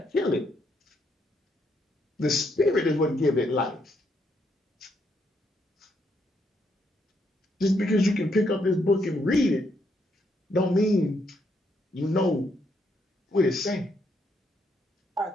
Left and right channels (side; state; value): both; normal; correlation 0.75